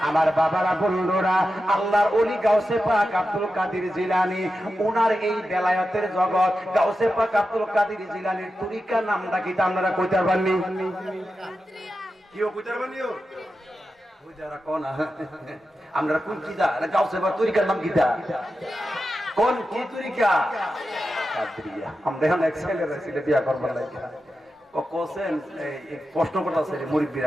আমার বাবারা বন্ধুরা, আল্লাহর ওলি গাউসে পাক আব্দুল কাদের জিলানী, ওনার এই বেলায়েতের জগৎ গাউসে পাক আব্দুল কাদের জিলানীর তরিকা নামটা কি আপনারা কইতে পারবেননি? কিও কইতে পারবেননি? ওই যারা কোন আমরা কোন কিদা গাউসে পাক তরিকার নাম কিদা? কোন কি তরিকা? কাদরিয়া। আমরা এখন এক্সেলের ছিল বিয়া করবার লাগি কোসেন এই প্রশ্ন করতেছে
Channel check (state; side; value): normal; both; correlation 0.90